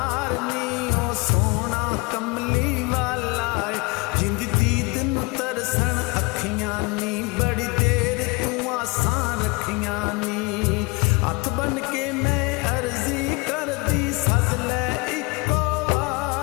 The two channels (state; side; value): quieter; right; 26.8 dB